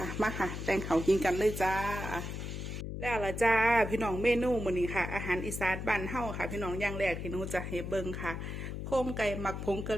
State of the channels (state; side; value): noise; left; hum, 6 dB below the sound